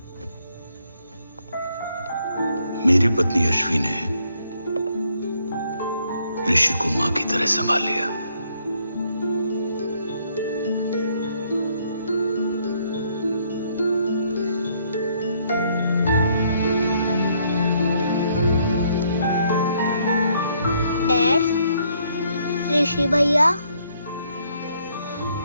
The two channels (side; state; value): both; inverted; correlation -0.70